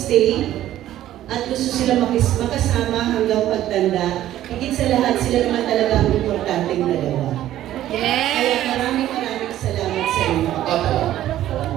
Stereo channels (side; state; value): left; quieter; 13.1 dB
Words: at gusto sila makasama hanggang pagtanda. Higit sa lahat, sila naman talaga ang importanteng dalawa. Kaya maraming salamat sa inyo.